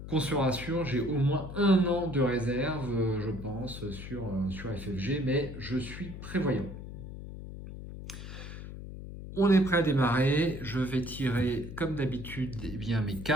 Qu'on se rassure, j'ai au moins 1 an de réserve, je pense, sur FFG, mais je suis prévoyant. On est prêt à démarrer, je vais tirer comme d'habitude eh bien, mes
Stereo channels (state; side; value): noise; left; hum, 10 dB below the sound